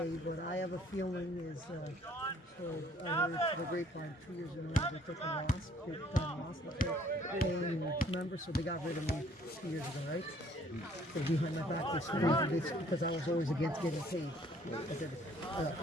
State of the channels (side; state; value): both; normal; correlation 0.60